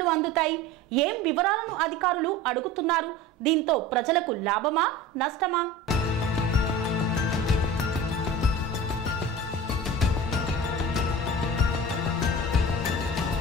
అందుతాయి, ఏం వివరాలను అధికారులు అడుగుతున్నారు, దీంతో ప్రజలకు లాభమా నష్టమా?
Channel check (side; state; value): both; normal; correlation 0.36